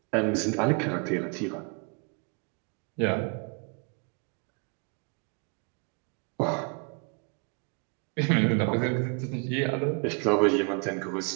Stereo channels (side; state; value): left; quieter; 36.8 dB